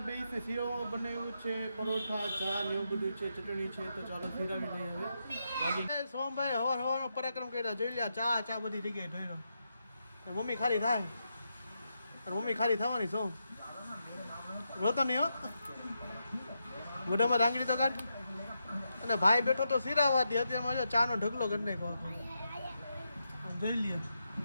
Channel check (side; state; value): both; inverted; correlation -0.84